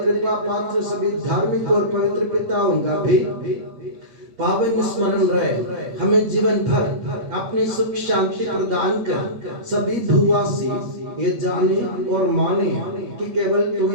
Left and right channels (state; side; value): late; left; 8.3 ms